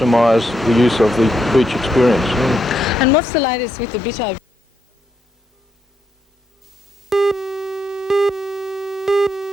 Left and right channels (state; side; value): normal; both; correlation 0.79